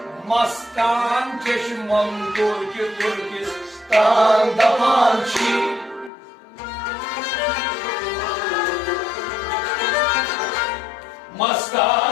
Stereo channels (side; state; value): right; drops out; at 6.1 s